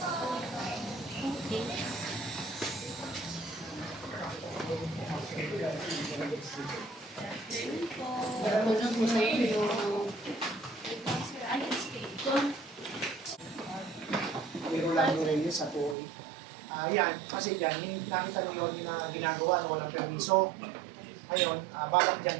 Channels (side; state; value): left; drops out; at 16.0 s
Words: Okay. May Rolando Reyes sa Tuoy. Yan, kasi dyan, yung nakita niyo yun na ginagawa na walang permiso. Ngayon, balak dyan,